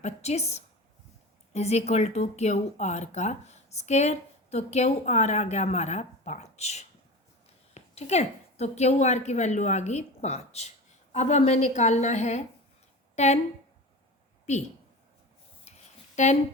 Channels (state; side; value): normal; both; correlation 0.31